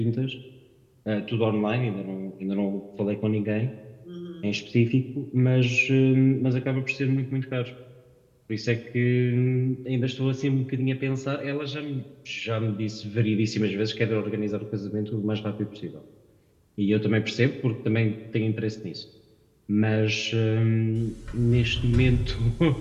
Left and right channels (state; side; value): identical; both; correlation 1.00